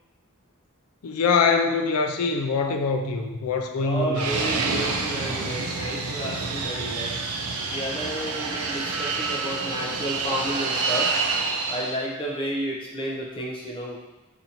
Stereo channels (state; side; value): normal; both; correlation 0.11